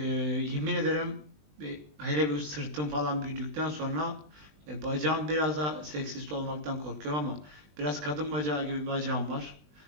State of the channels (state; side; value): late; left; 20 ms